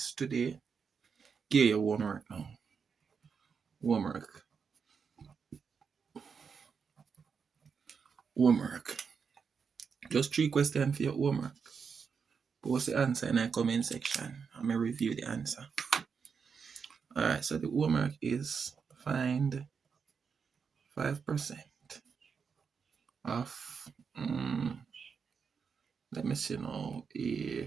today. Give your homework now. Homework. Just 3 questions for your homework. Post the answer in the comment section. I'm going to review the answer. Alright, so the homework is find 5% of, let me see now,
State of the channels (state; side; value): quieter; left; 6.0 dB